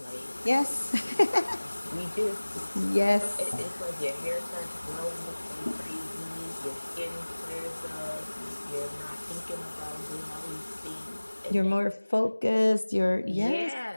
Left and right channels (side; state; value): both; inverted; correlation -1.00